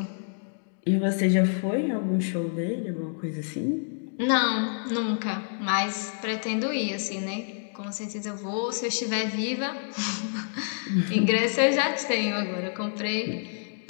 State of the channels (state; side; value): silent; right; digital silence